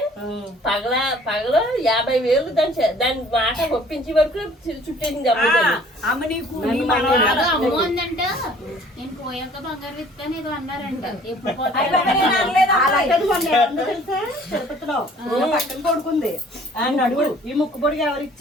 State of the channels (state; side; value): normal; both; correlation 0.54